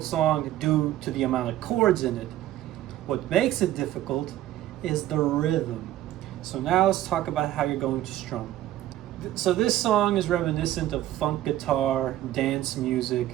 song due to the amount of chords in it. What makes it difficult is the rhythm. So now let's talk about how you're going to strum. So this song is reminiscent of funk guitar, dance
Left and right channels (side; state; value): left; quieter; 13.7 dB